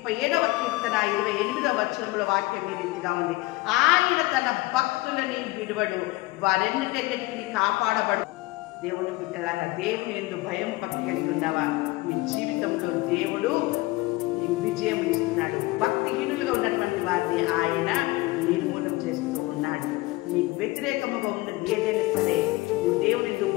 37వ కీర్తన 28వ వచనంలో వాక్యం ఈ రీతిగా ఉంది, ఆయన తన భక్తులని విడువడు, వారెన్నిటికీ కాపాడబడు. దేవుని బిడ్డలారా, దేవుని యందు భయము భక్తి కలిగి ఉన్నావా? మీ జీవితంలో దేవుడు నీకు విజయం ఇస్తున్నాడు. భక్తిహీనులుగా ఉన్నటువంటి వారిని ఆయన నిర్మూలన చేస్తూ ఉన్నాడు. నీకు వ్యతిరేకముగా ఉన్నది ఏదైనా సరే, నువ్వు దేవుని యందు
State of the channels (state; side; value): quieter; right; 20.8 dB